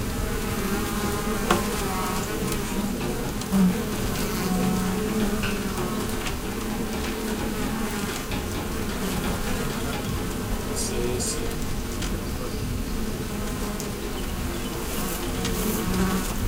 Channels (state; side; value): identical; both; correlation 1.00